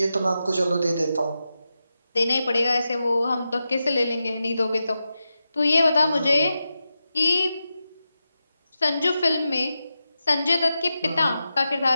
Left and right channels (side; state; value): both; inverted; correlation -0.90